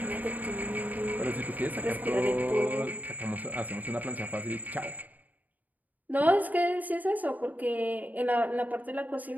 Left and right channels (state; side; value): late; left; 0.080 ms